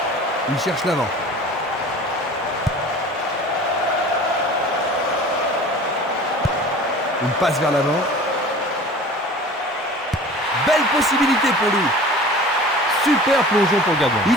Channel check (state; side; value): normal; both; correlation 0.41